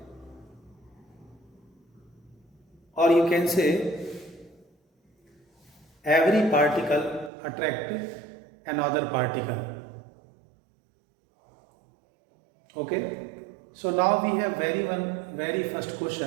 or you can say every particle attracts another particle. Okay, so now we have very first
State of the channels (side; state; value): left; drops out; at 7.3 s